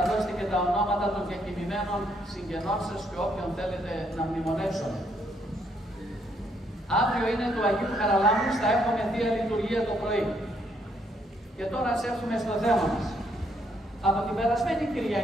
δώσετε και τα ονόματα των διακοιμημένων συγγενών σας και όποιον θέλετε να μνημονεύσουν. Αύριο είναι του Αγίου Χαραλάμπους, θα έχουμε Θεία Λειτουργία το πρωί. Και τώρα ας έρθουμε στο θέμα μας. Από την περασμένη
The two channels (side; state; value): both; normal; correlation 0.72